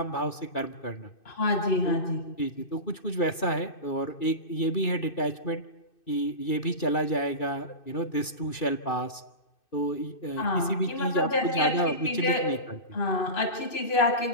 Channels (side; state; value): right; late; 2.6 ms